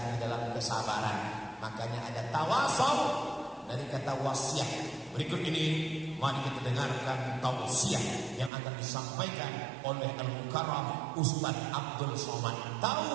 dalam kesabaran. Makanya ada tawasaw dari kata wasiat. Berikut ini mari kita dengarkan tausiah yang akan disampaikan oleh Al-Mukarram Ustaz Abdul Somad.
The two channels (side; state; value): left; drops out; at 8.5 s